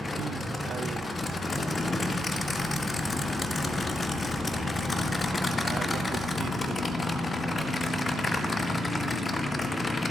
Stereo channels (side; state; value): both; normal; correlation 0.85